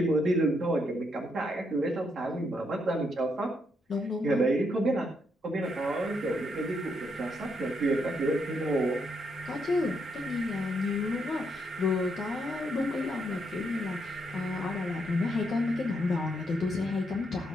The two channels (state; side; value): normal; both; correlation 0.77